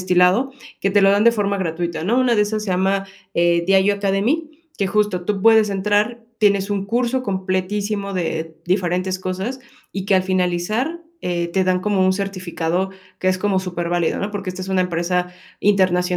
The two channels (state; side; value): identical; both; correlation 1.00